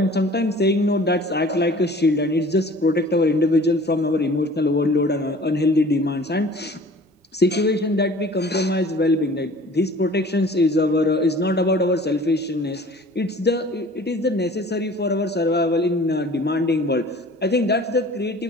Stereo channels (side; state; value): both; normal; correlation 0.47